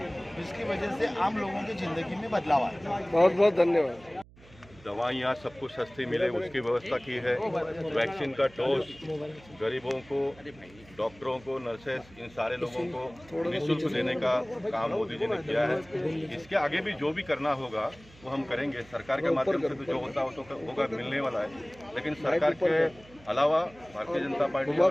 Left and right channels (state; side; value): noise; right; hum, 24 dB below the sound